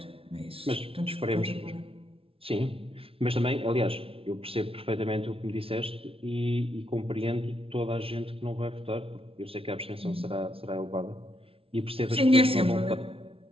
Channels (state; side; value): late; left; 0.26 ms